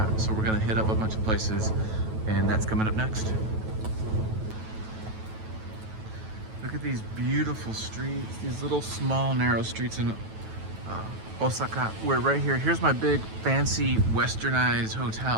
so we're gonna hit up a bunch of places, and that's coming up next. Look at these beautiful streets, these little small narrow streets in Osaka. We're right here. Here's my big fancy westernized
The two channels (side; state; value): left; late; 9.2 ms